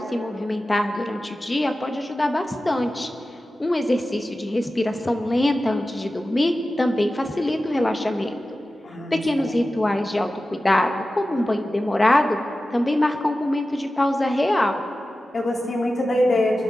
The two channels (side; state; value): both; normal; correlation 0.94